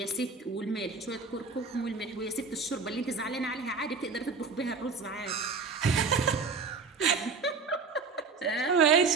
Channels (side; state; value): left; quieter; 4.7 dB